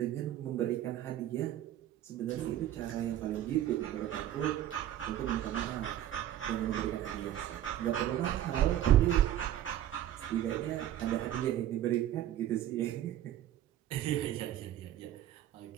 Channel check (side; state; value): left; quieter; 12.2 dB